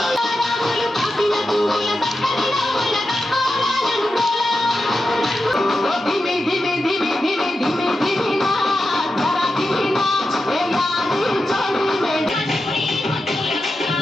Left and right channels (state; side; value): normal; both; correlation 0.90